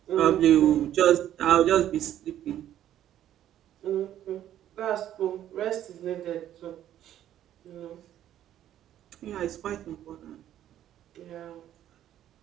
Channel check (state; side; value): quieter; left; 11.6 dB